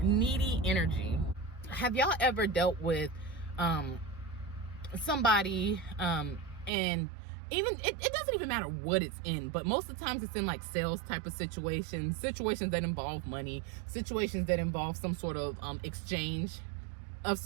Needy energy. Have y'all ever dealt with somebody and even it doesn't even matter what it's in, but most of the times it's in like sales type of situations that involve money, situations that involve some sort of exchange of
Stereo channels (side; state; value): left; drops out; at 6.7 s